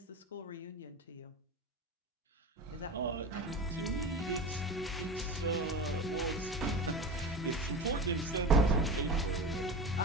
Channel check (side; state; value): both; normal; correlation 0.29